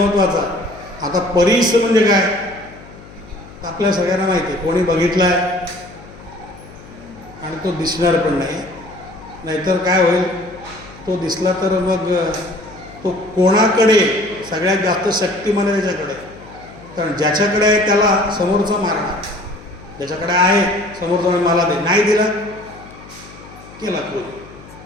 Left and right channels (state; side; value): noise; left; hum, 20 dB below the sound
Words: आता परीस म्हणजे काय? आपल्या सगळ्यांना माहिती आहे, कोणी बघितलाय आणि तो दिसणार पण नाही. नाहीतर काय होईल, तो दिसला तर मग तो कोणाकडे सगळ्यात जास्त शक्तिमान आहे? त्याच्याकडे. कारण ज्याच्याकडे आहे त्याला समोरचा मारणार, ज्याच्याकडे आहे समोरचा मला दे, नाही दिला केला